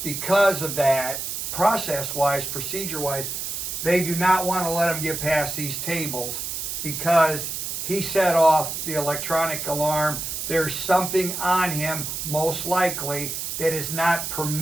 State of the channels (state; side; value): noise; right; hiss, 4 dB below the sound